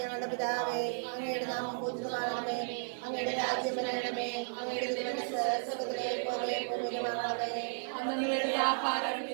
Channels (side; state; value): left; silent; digital silence